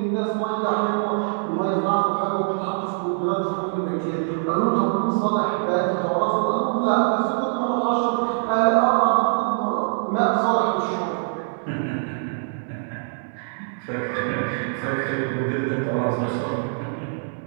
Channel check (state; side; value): silent; left; 63 dB below the other